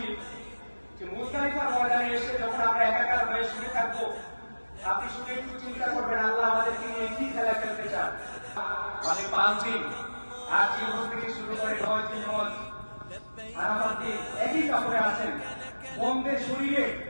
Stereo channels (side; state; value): both; inverted; correlation -1.00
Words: যে মুজদালিফার ময়দানে এসে যখন আমরা একাকার হয়ে শুনে থাকবো, আপনি শুনে একটু চিন্তা করবেন আল্লাহ আমাদেরকে নিয়ে কি খেলা খেলতে চান। মানে 5 দিন আজ ইউরোপ থেকে শুরু করে 9 দিন হজ আরাফাত দিন একই কাপড়ে আছেন, বন্ধে শরীরে